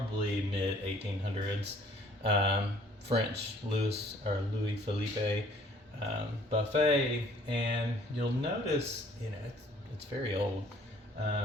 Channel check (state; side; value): normal; both; correlation 0.57